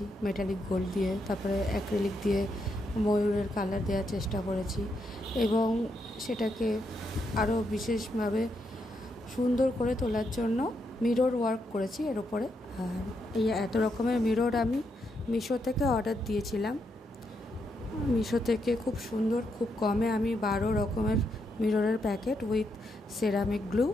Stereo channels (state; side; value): normal; both; correlation 0.80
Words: মেটালিক গোল্ড দিয়ে, তারপরে অ্যাক্রিলিক দিয়ে ময়ূরের কালার দেওয়ার চেষ্টা করেছি এবং সেটাকে আরও বিশেষভাবে সুন্দর করে তোলার জন্য মিরর ওয়ার্ক করেছি এর ওপরে। আর এই এত রকমের মিরর আমি মিশো থেকে অর্ডার দিয়েছিলাম। মিশো থেকে খুব সুন্দর, খুব কমে আমি 12 রকমের মিররের প্যাকেট উইথ সেরামিক গ্লু